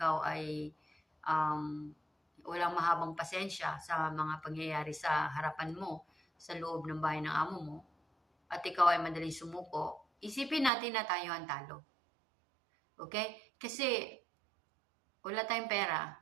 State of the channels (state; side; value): drops out; left; at 10.7 s